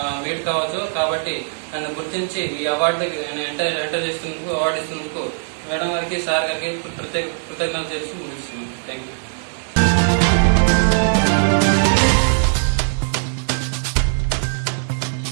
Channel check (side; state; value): left; silent; 66 dB below the other